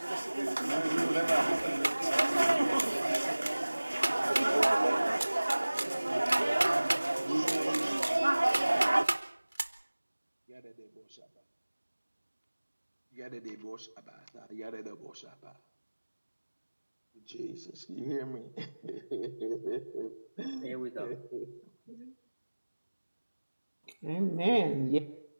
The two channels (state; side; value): inverted; both; correlation -1.00